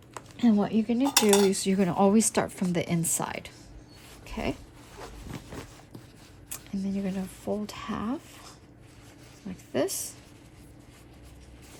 And what you're gonna do is you're gonna always start from the inside. Okay, and then you're gonna fold half like this,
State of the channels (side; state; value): both; identical; correlation 1.00